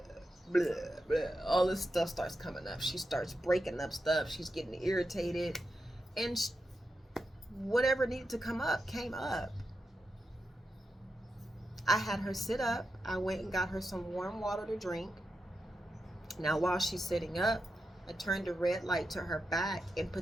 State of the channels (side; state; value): both; normal; correlation 0.88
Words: blah, all this stuff starts coming up. She starts breaking up stuff. She's getting irritated, and whatever needed to come up came up. I had her sit up. I went and got her some warm water to drink. Now while she's sitting up, I turned the red light to her back and